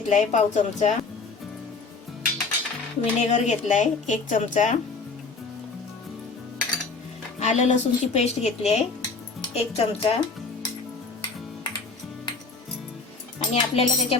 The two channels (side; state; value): right; quieter; 4.3 dB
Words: पाव चमचा, विनेगर घेतलाय 1 चमचा, आलं लसूणची पेस्ट घेतली आहे 1 चमचा, आणि आपल्याला